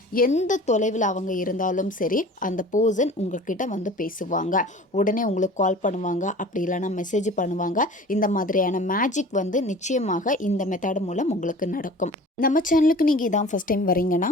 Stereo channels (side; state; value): both; normal; correlation 0.42